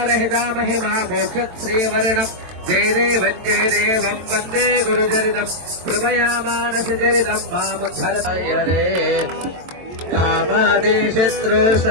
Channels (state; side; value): late; left; 22 ms